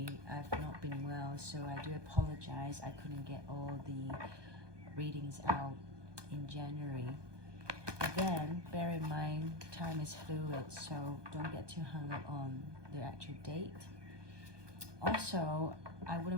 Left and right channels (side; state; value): left; late; 1.2 ms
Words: I've not been well, so I do apologize. I couldn't get all the readings out in January. But then, bear in mind, time is fluid, so don't get too hung up on the actual date. Also, I